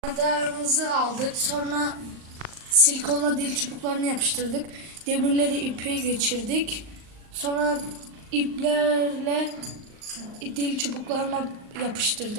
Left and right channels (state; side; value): late; left; 38 ms